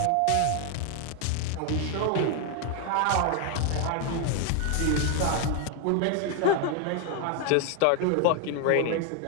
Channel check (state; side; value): different; both; correlation 0.01